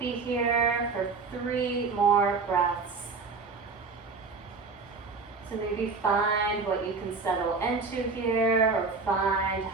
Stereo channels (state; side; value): quieter; left; 4.4 dB